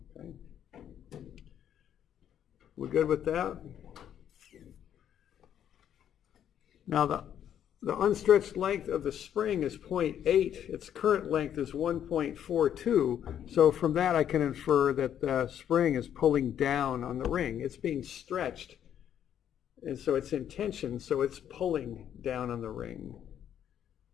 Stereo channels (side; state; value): right; quieter; 9.8 dB